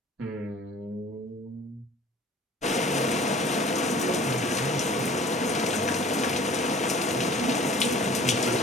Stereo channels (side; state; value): both; normal; correlation 0.47